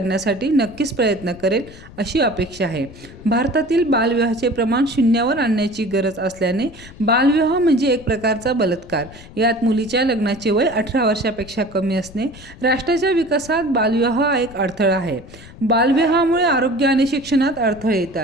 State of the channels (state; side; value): noise; left; rumble, 19 dB below the sound